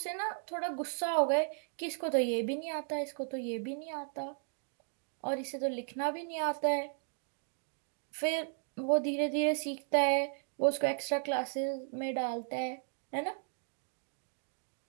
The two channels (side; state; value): left; silent; 54 dB below the other